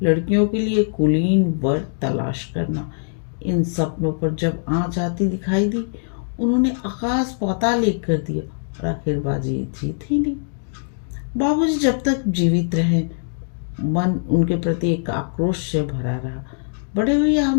लड़कियों के लिए कुलीन वर तलाश करना। इन सपनों पर जब आँच आती दिखाई दी, उन्होंने आकाश पाताल एक कर दिया और आखिर बाजी जीत ही नहीं। बाबूजी जब तक जीवित रहे, मन उनके प्रति एक आक्रोश से भरा रहा। बड़े भैया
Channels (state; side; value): silent; right; digital silence